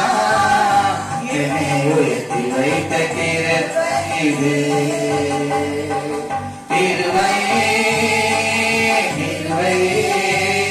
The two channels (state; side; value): identical; both; correlation 1.00